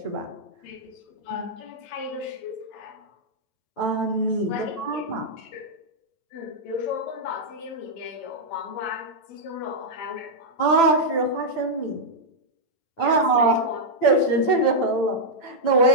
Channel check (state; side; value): late; right; 9.0 ms